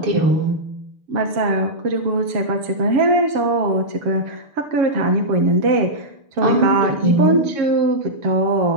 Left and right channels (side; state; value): left; late; 6.8 ms